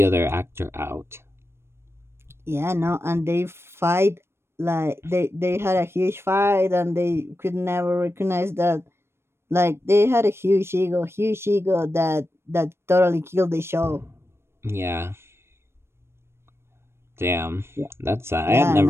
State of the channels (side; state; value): left; late; 0.12 ms